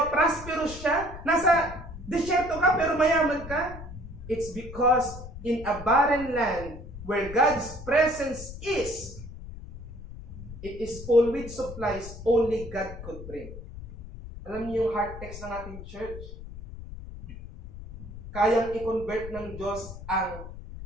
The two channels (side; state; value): left; noise; rumble, 12 dB below the sound